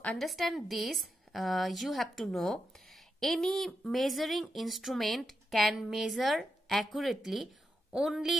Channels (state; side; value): normal; both; correlation 0.86